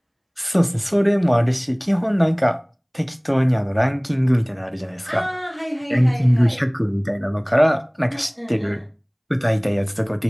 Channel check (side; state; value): both; identical; correlation 1.00